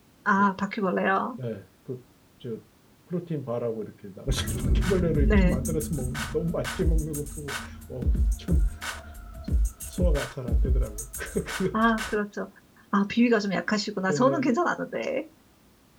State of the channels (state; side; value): identical; both; correlation 1.00